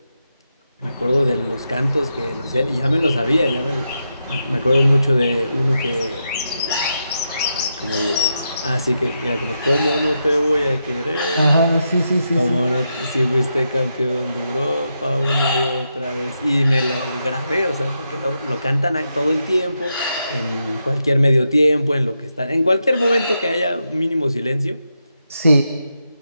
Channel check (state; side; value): inverted; both; correlation -0.85